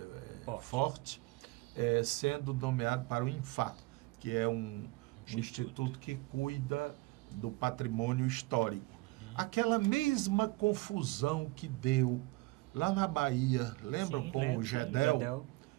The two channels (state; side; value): quieter; left; 22.2 dB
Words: Forte, sendo nomeado para o INFA, que é um instituto que cuida do patrimônio histórico. aquela mesma confusão que deu lá na Bahia, lembram, Sim, com o Gedel?